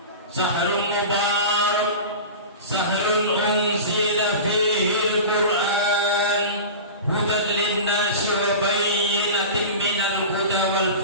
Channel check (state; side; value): inverted; both; correlation -0.31